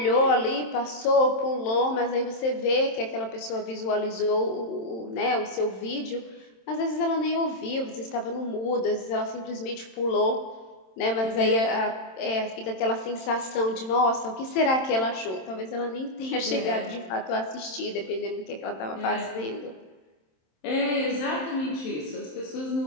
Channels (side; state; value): right; late; 27 ms